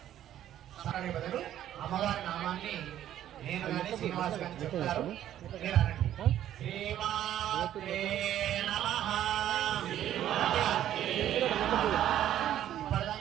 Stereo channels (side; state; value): left; quieter; 11.7 dB